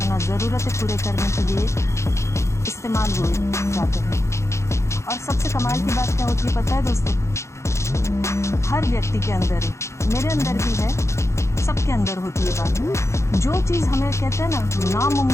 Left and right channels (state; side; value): late; right; 0.14 ms